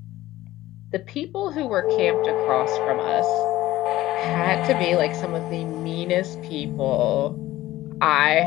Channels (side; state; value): right; quieter; 16.0 dB